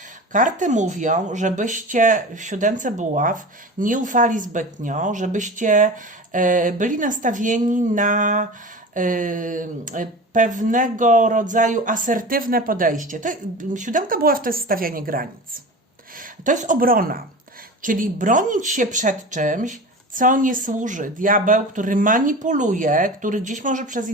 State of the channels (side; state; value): both; normal; correlation 0.33